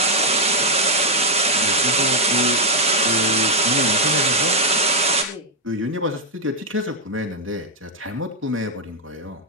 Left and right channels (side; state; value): both; normal; correlation -0.01